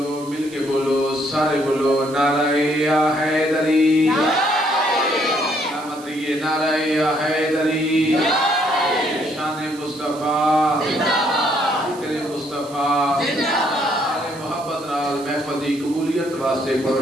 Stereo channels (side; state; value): right; noise; hiss, 19 dB below the sound